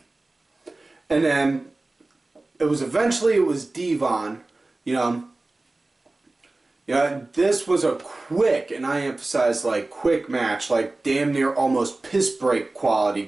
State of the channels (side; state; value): left; quieter; 3.0 dB